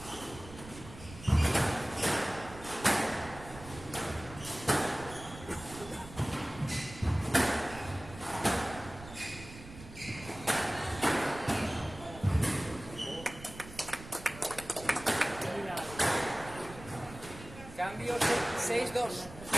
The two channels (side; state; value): right; noise; rumble, 15 dB below the sound